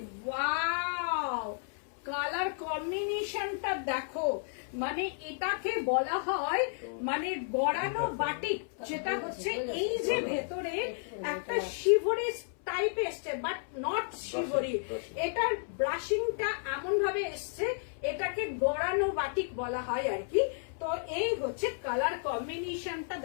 ওয়াও, কালার কম্বিনেশনটা দেখো, মানে এটাকে বলা হয় মানে গড়ানো বাটিক, যেটা হচ্ছে এই যে ভেতরে একটা শিভরি টাইপ এসছে, বাট নট শিভরি। এটার ব্রাশিংটা এমন ভাবে এসছে, এটাকে গড়ানো বাটিক বলা হয় আর কি। তো এই হচ্ছে কালার কম্বিনেশনটা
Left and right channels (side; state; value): right; silent; 56 dB below the other